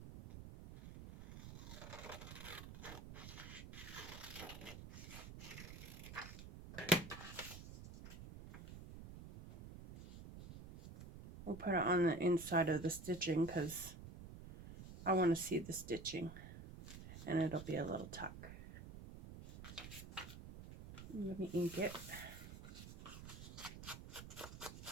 We'll put it on the inside of the stitching because I want to see the stitching, and it'll be a little tuck. Let me ink it.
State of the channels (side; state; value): right; noise; rumble, 12 dB below the sound